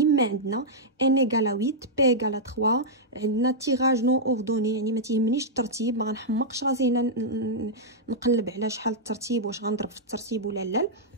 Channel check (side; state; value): both; normal; correlation -0.07